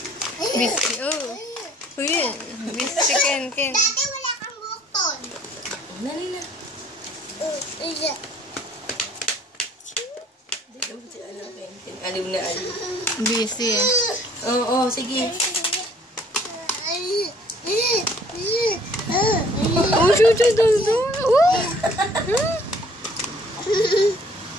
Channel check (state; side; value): normal; both; correlation 0.57